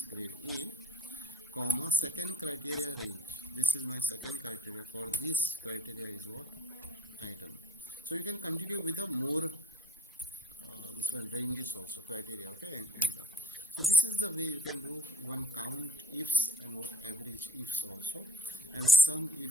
grade A, comma, second criteria range. This is my second criteria. For this criteria is what? Item. So you can continue with a more this one ranges also, criteria. Okay, and so this is the way you can do one count ifs and what average ifs also, and some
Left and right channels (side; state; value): both; normal; correlation 0.53